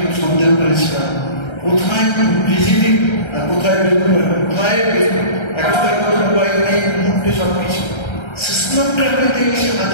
সন্দেহ করেছিলাম কোথায় ভিজিটিং আর কোথায় কোথায় একটা মোবাইল নেই, মুহূর্তে সব কিছু সিস্টেমটাকে এসে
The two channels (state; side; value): late; right; 1.3 ms